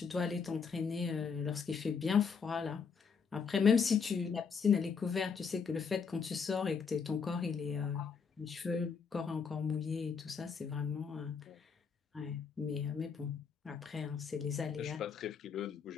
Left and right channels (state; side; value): quieter; right; 5.8 dB